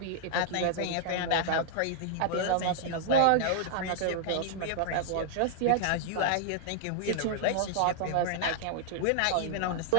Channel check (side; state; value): both; different; correlation -0.01